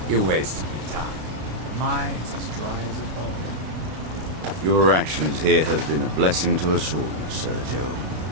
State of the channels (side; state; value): left; late; 32 ms